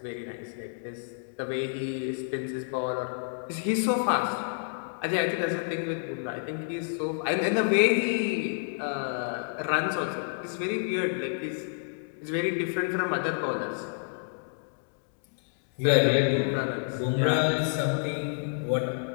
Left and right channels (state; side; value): silent; right; digital silence